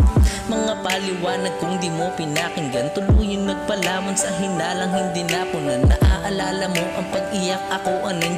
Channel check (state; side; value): identical; both; correlation 1.00